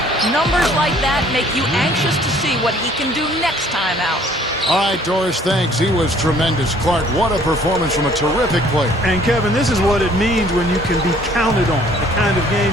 Numbers like that make you anxious to see what he can do next time out. All right, Doris, thanks. He was tremendous. Clark, what a performance from a terrific player. And, Kevin, this is what it means when you can be counted on. The kind of game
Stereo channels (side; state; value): both; normal; correlation 0.57